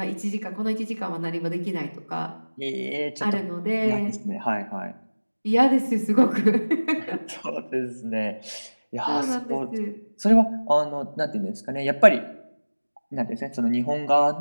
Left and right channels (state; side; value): inverted; both; correlation -1.00